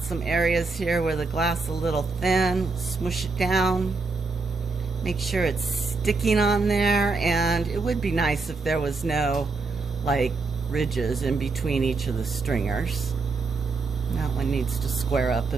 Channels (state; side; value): quieter; left; 4.0 dB